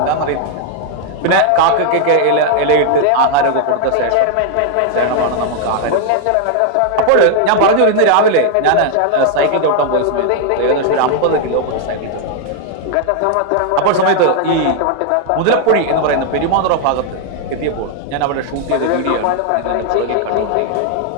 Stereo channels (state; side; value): different; both; correlation 0.00